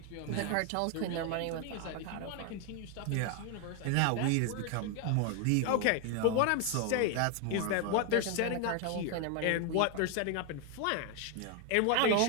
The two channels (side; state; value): both; different; correlation 0.01